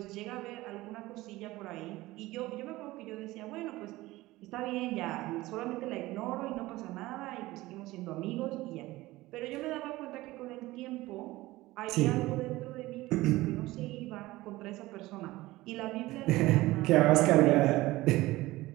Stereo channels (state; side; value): quieter; left; 18.6 dB